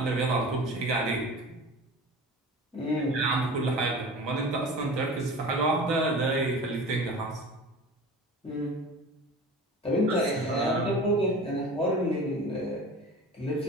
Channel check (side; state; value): both; normal; correlation 0.37